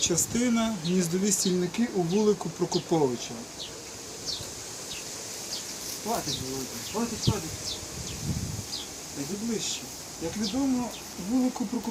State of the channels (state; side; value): identical; both; correlation 1.00